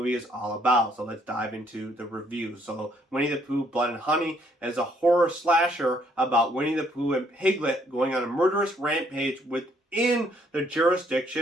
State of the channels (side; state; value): both; normal; correlation 0.67